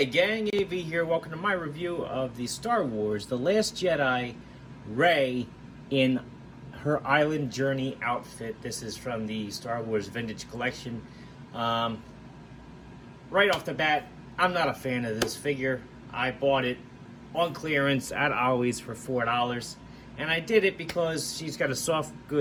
gang, AV here. Welcome to my review of the Star Wars The Last Jedi Rey in her Island Journey outfit. This is from the Star Wars Vintage Collection. Right off the bat, I'm not a fan of this figure. I bought it on clearance at Ollie's for $4. And I did it because she's got a soft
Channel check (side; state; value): both; identical; correlation 1.00